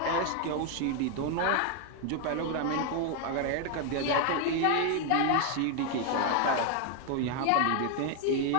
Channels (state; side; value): different; both; correlation 0.01